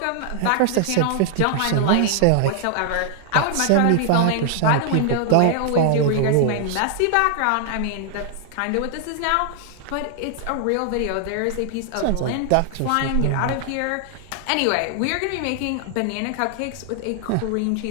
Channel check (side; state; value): both; different; correlation 0.00